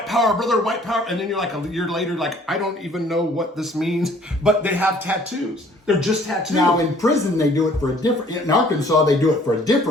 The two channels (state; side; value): normal; both; correlation 0.57